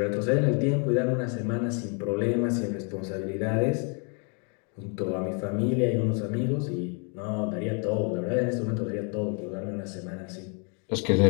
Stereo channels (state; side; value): quieter; right; 36.8 dB